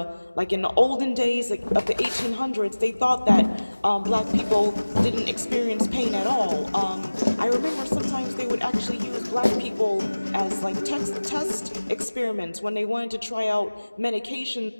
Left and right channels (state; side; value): inverted; both; correlation -1.00